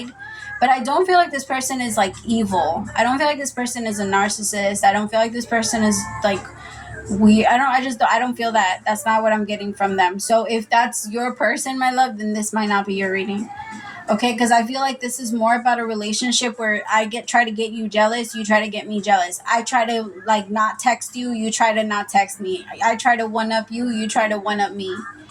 But I don't feel like this person is like evil. I don't feel like this person is a narcissist. I don't feel like this person is like I don't feel that. That's not what I'm getting from them. So if that's your person, my love, then this might not be your reading. Okay, because I feel like this is more about a relationship where I try to get you jealous, you try to get me jealous. I try to like not text you, you try to not text me. I try to one up you, you try to one up me.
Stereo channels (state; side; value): identical; both; correlation 1.00